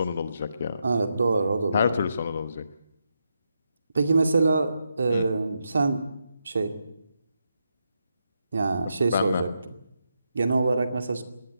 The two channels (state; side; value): inverted; both; correlation -0.83